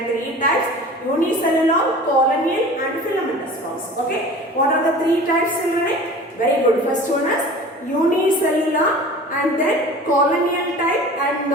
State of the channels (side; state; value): both; normal; correlation 0.40